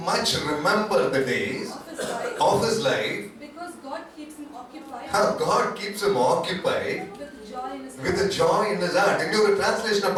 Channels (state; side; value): identical; both; correlation 1.00